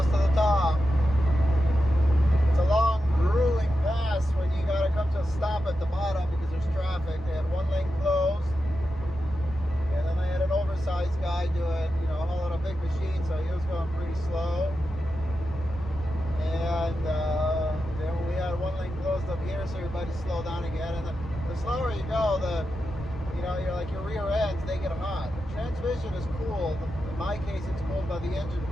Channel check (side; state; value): both; normal; correlation 0.89